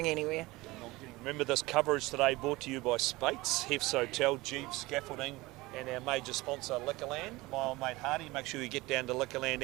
anywhere. Remember this coverage today brought to you by Spates, Hef's Hotel, Jeeves Scaffolding, and our major sponsor Liquorland. My old mate Hardy. Make sure you get down to Liquorland,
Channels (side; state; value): left; quieter; 21.0 dB